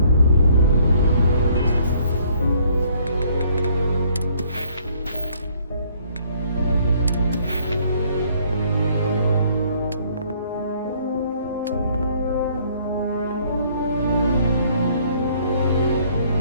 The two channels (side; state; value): both; inverted; correlation -0.62